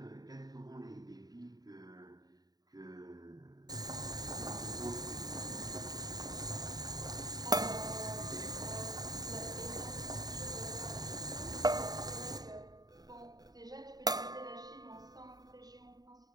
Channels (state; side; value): late; left; 0.19 ms